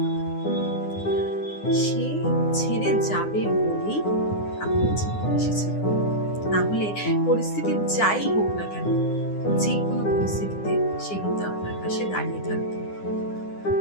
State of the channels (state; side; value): late; right; 9.8 ms